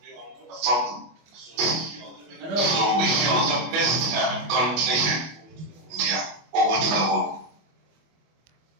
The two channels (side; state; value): left; late; 25 ms